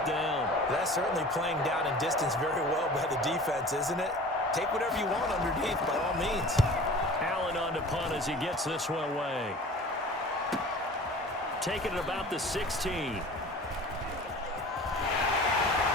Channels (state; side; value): normal; both; correlation 0.42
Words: down. That's certainly playing down in distance very well by the defense, isn't it? Take whatever you want underneath, by all means. Allen on to punt as he gets this one away. Taking it about the 16. He's